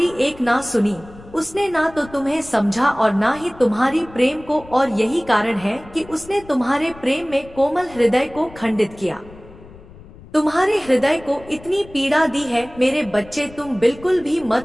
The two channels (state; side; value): noise; left; rumble, 20 dB below the sound